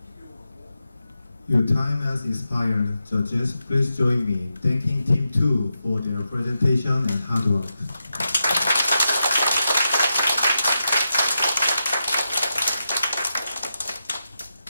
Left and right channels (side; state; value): both; inverted; correlation -0.88